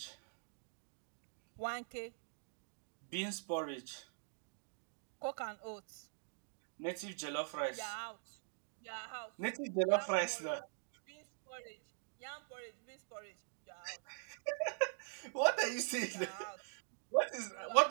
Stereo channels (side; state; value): left; silent; digital silence